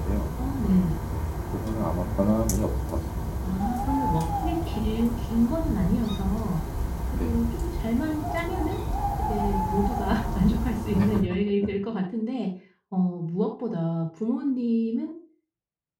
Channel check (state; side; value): identical; both; correlation 1.00